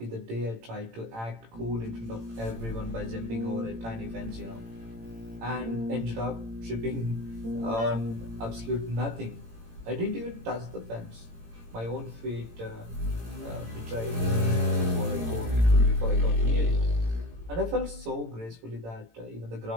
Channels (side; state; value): left; late; 18 ms